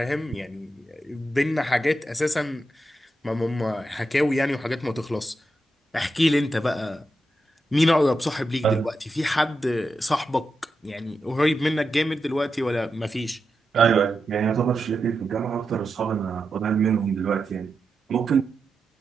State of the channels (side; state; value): both; normal; correlation 0.88